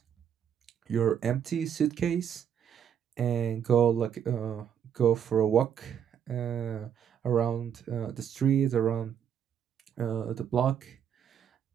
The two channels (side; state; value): left; quieter; 8.6 dB